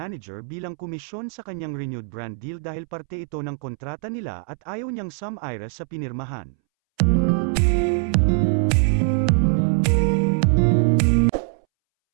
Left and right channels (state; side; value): silent; left; 64 dB below the other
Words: bilang komisyon sa kanyang renewed brand deal dahil parte ito ng kontrata nila at ayaw niyang sum-ira sa pinirmahan.